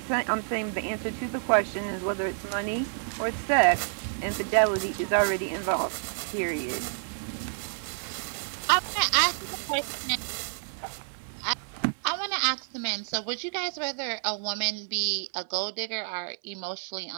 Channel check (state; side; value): silent; left; 59 dB below the other